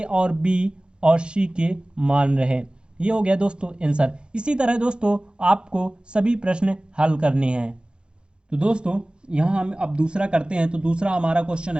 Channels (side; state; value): left; late; 0.051 ms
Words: और b और c के मान रहे। ये हो गया दोस्तों आंसर। इसी तरह दोस्तों आपको सभी प्रश्न हल करने हैं। तो दोस्तों यहाँ हम अब दूसरा करते हैं। तो दूसरा हमारा क्वेश्चन